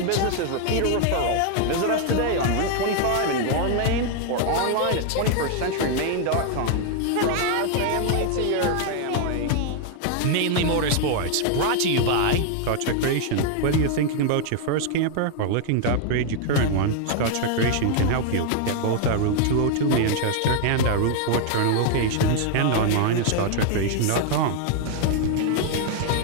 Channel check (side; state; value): both; different; correlation 0.00